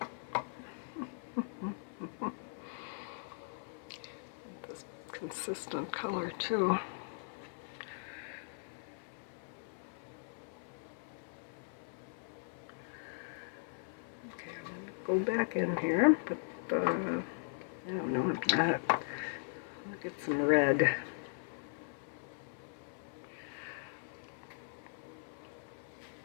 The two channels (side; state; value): right; silent; 52 dB below the other